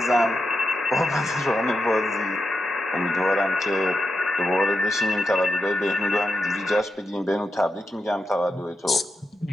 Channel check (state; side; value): normal; both; correlation 0.87